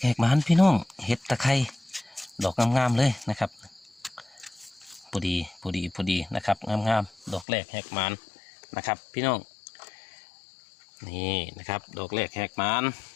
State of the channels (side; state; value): right; drops out; at 7.5 s